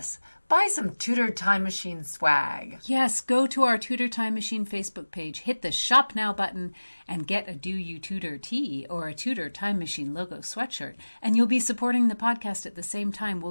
Buy some Tudor Time Machine swag. Yes, go to our Tudor Time Machine Facebook page, hit the Shop Now button, and get a Do You Tudor tee or a Tudor Time Machine logo sweatshirt. And you'll be supporting the podcast at the same time.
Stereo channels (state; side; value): inverted; both; correlation -1.00